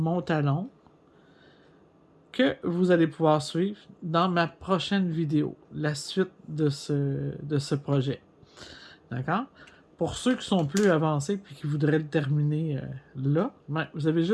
talon que vous allez pouvoir suivre dans ma prochaine vidéo, la suite de ce projet. D'accord? Pour ceux qui sont plus avancés et qui voudraient le terminer là, ben, vous avez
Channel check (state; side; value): identical; both; correlation 1.00